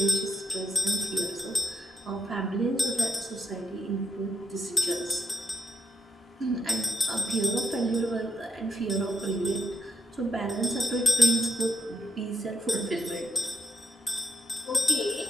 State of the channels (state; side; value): normal; both; correlation 0.77